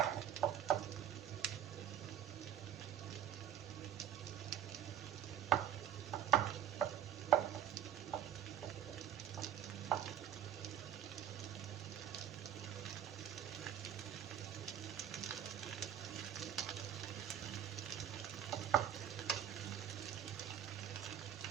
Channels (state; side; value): quieter; left; 9.6 dB